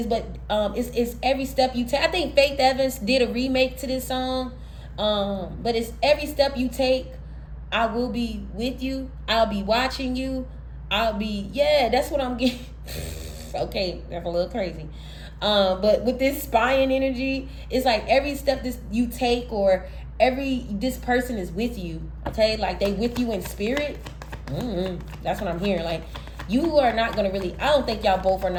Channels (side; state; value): both; identical; correlation 1.00